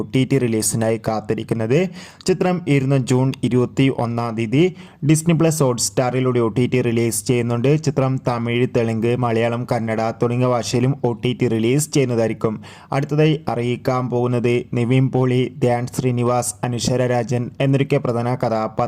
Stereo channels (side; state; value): both; identical; correlation 1.00